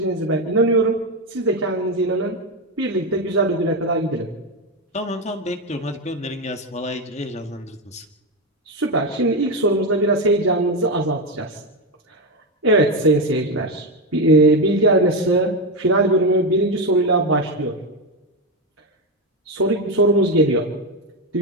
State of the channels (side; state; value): both; normal; correlation 0.11